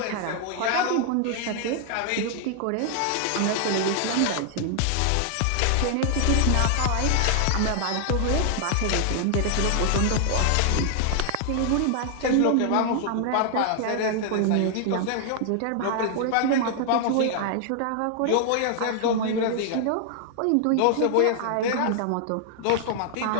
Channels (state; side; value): different; both; correlation 0.00